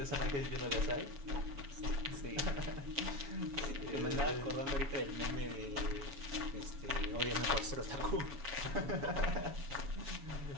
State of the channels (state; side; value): late; left; 7.2 ms